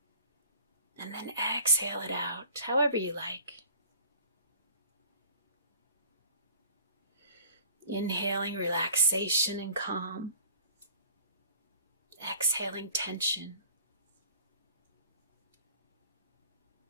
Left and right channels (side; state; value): both; inverted; correlation -0.47